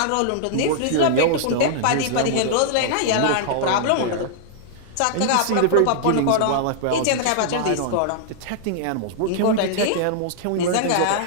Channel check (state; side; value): different; both; correlation -0.01